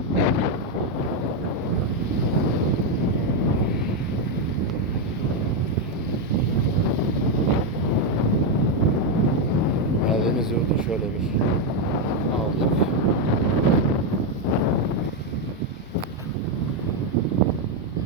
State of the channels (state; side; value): normal; both; correlation 0.04